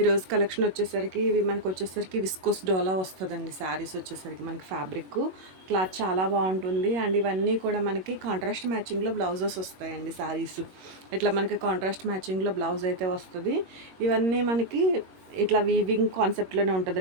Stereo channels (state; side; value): late; left; 21 ms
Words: కలెక్షన్ వచ్చేసరికి మనకు వచ్చేసరికి విస్కోస్ డోలా వస్తుందండి. శారీస్ వచ్చేసరికి మనకి ఫ్యాబ్రిక్ క్లాత్ చాలా బాగుంటుంది. అండ్ ఇవన్నీ కూడా మనకి కాంట్రాస్ట్ మ్యాచింగ్లో బ్లౌజెస్ వస్తాయండి. శారీస్ ఇట్లా మనకి కాంట్రాస్ట్ మ్యాచింగ్లో బ్లౌజ్ అయితే వస్తుంది. ఇవన్నీ మనకి ఇట్లా వీవింగ్ కాన్సెప్ట్లోనే